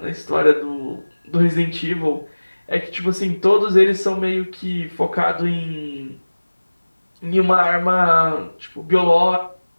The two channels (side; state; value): both; inverted; correlation -1.00